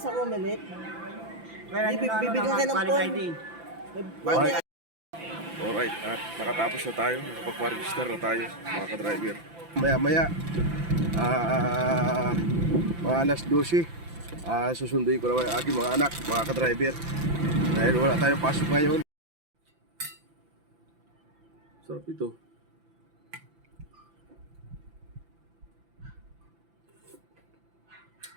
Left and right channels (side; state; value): left; late; 5.9 ms